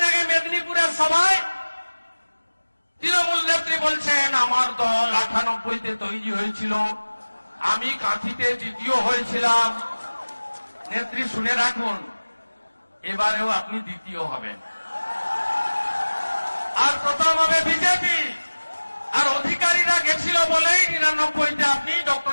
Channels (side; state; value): both; inverted; correlation -1.00